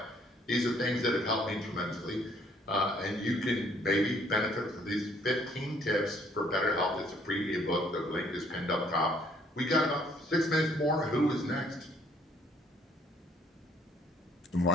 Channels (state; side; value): normal; both; correlation 0.63